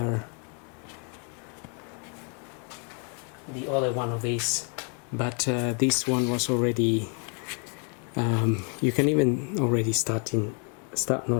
one of these, but this one was already you can even already start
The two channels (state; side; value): quieter; right; 38.8 dB